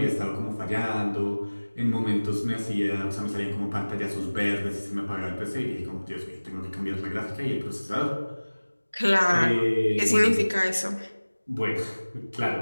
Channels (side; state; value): both; inverted; correlation -1.00